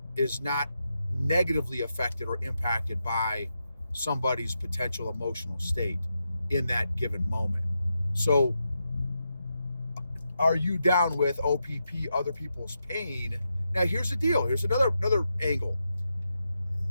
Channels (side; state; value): both; inverted; correlation -0.86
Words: negatively affected or impacted by somebody's potential emotional state in that given moment. So are you down with OPP, other people's pain? Now here's the deal. Here's another angle